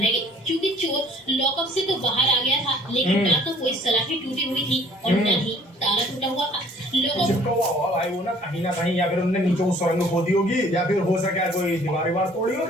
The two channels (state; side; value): normal; both; correlation 0.54